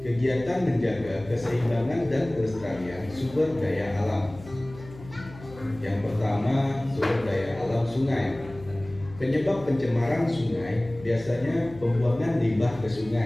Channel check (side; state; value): left; noise; hum, 18 dB below the sound